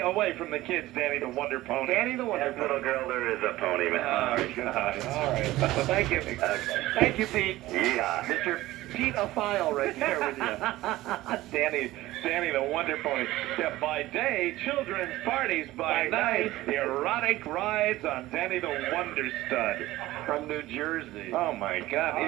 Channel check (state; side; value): quieter; left; 16.9 dB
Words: away from the kids, Danny the Wonder Pony. Danny the Wonder Pony. Little girl, there is a pony, man. Oh, God. All right. Thank you. Thank you, Pete. Yeah. Mr. Pete a file right there with you. Danny the Wonder Pony. Yeah, by day, children's parties. By night, erotic rides on Danny the Wonder Stud. From New Jersey. Oh, my God.